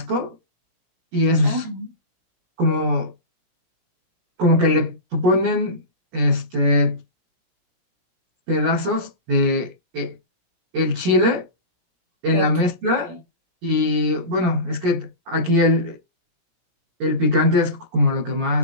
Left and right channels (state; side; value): late; left; 16 ms